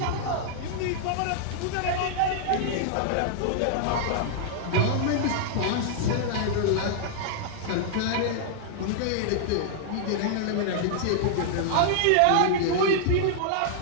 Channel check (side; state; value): both; different; correlation -0.01